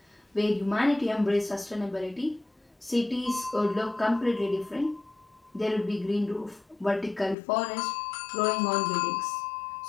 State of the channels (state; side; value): drops out; right; at 7.4 s